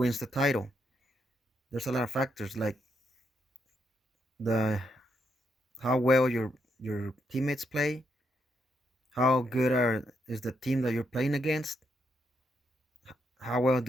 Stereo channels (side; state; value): both; normal; correlation 0.79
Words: the title. There's a lot of factors like the how well your teammates play, how good is the team that you're playing against, how well